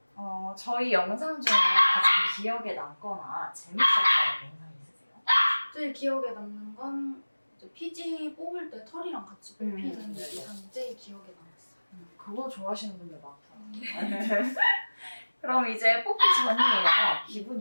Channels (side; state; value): both; inverted; correlation -1.00